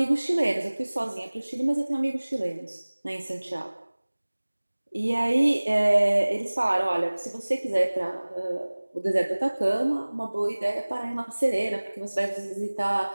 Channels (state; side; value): inverted; both; correlation -1.00